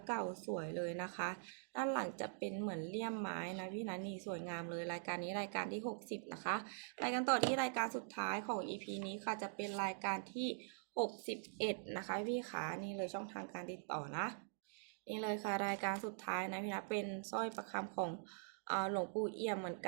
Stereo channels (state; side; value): silent; left; digital silence